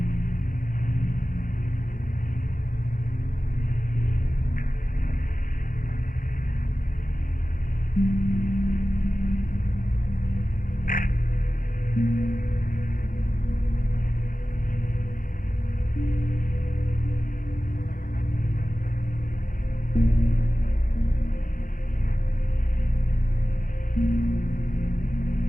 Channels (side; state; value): right; late; 0.40 ms